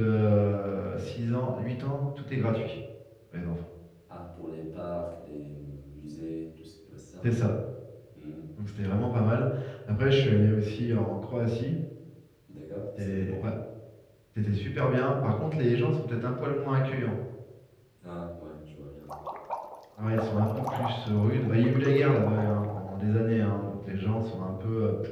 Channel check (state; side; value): identical; both; correlation 1.00